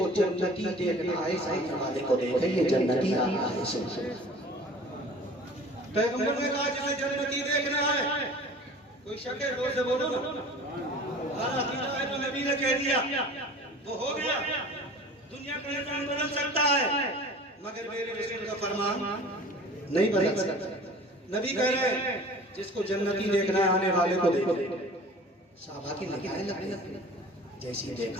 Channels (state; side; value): normal; both; correlation 0.43